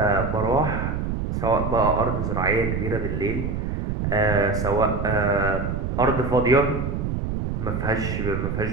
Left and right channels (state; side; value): noise; right; rumble, 2 dB below the sound